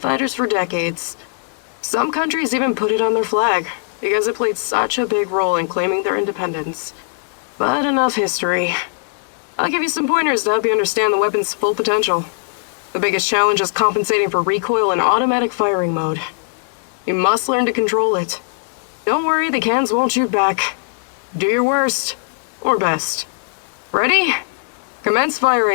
for decades. Some countries even put it on their flag, because it played such a big role in claiming their independence. But enough history. I'll give you some pointers to help you understand the weapon's full potential. The biggest challenge is compensating for recoil in automatic firing mode. You must learn to control it. Don't worry, the cans won't shoot back. Do your worst. Or best. Ready? Commence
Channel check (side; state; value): right; silent; digital silence